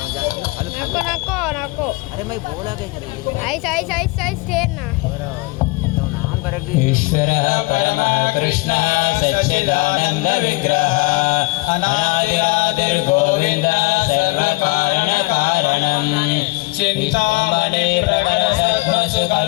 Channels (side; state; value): right; quieter; 23.8 dB